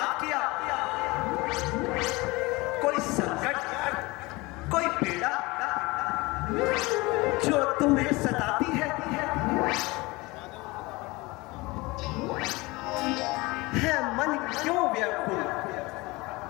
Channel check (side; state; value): right; quieter; 23.1 dB